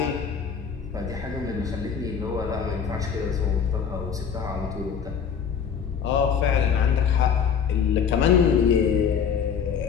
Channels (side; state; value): right; quieter; 7.0 dB